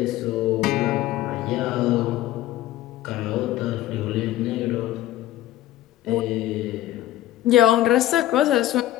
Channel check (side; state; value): right; quieter; 14.3 dB